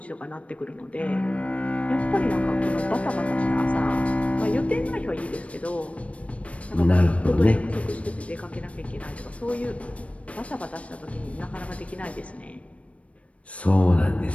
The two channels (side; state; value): right; late; 0.064 ms